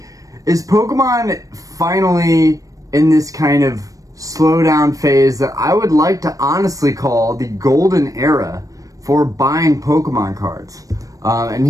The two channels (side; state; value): left; late; 0.16 ms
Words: is Pokemon finally in this kind of slowdown phase that I would like to honestly call the golden era for buying Pokemon cards. And